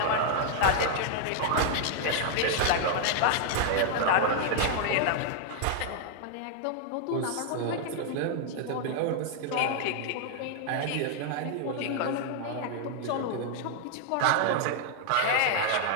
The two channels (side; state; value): both; different; correlation 0.00